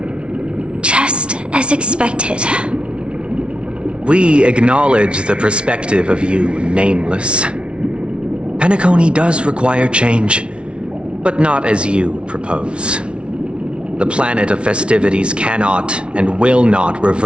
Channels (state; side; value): late; left; 0.058 ms